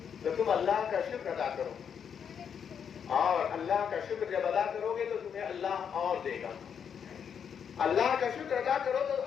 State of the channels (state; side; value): quieter; right; 7.6 dB